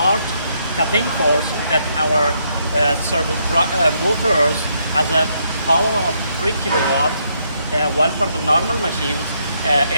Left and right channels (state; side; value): inverted; both; correlation -0.75